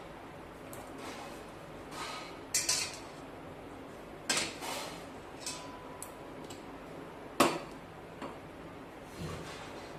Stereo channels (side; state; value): both; identical; correlation 1.00